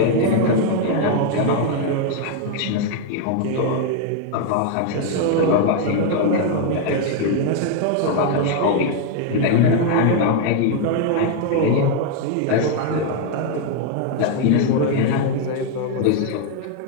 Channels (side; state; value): both; different; correlation 0.00